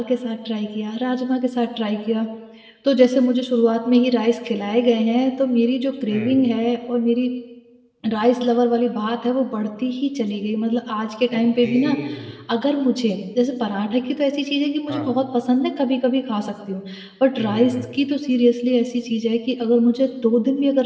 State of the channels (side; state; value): both; identical; correlation 1.00